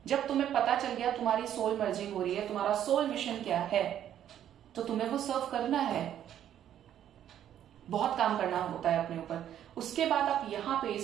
जब तुम्हें पता चल गया तुम्हारी सोल मर्जिंग हो रही है, तुम्हारा सोल मिशन क्या है, तो तुम्हें वो सर्व करना है। बहुत काम करना होता है अपने ऊपर। उसके बाद आप यहाँ पे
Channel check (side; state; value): left; quieter; 10.6 dB